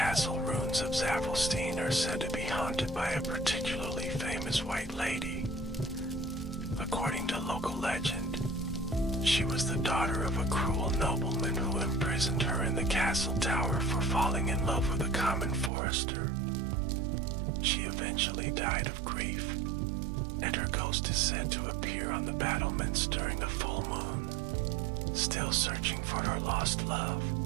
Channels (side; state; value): left; drops out; at 15.7 s